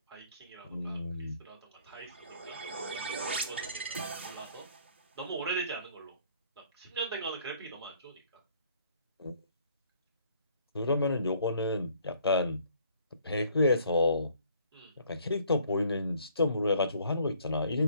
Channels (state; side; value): inverted; both; correlation -0.61